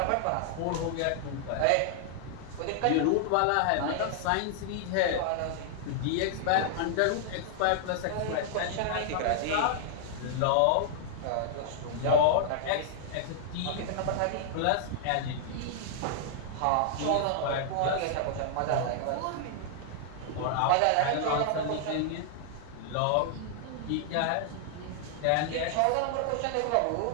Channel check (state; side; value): different; both; correlation 0.00